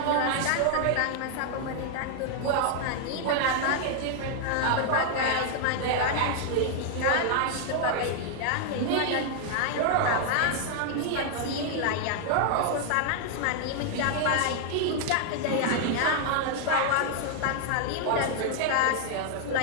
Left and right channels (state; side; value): different; both; correlation 0.00